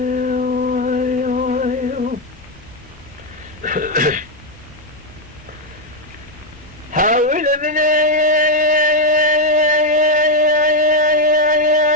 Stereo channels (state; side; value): normal; both; correlation 0.03